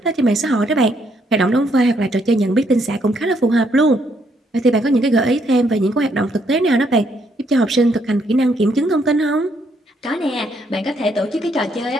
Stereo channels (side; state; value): both; normal; correlation 0.72